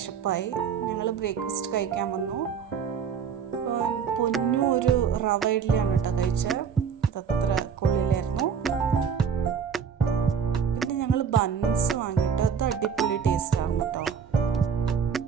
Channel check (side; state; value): left; quieter; 7.0 dB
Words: ഞങ്ങൾ ബ്രേക്ക്ഫാസ്റ്റ് കഴിക്കാൻ വന്നു. പൊന്നു ഒരു റവ ഇഡ്ഡലിയാണ് കേട്ടോ കഴിച്ചത്. അതത്ര കൊള്ളിലായിരുന്നു. പിന്നെ ഞങ്ങൾ ബൺസ് വാങ്ങിയിട്ട് അത് അടിപൊളി ടേസ്റ്റായിരുന്നു കേട്ടോ.